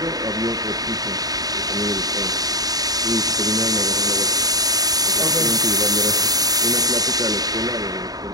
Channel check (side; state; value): left; late; 0.18 ms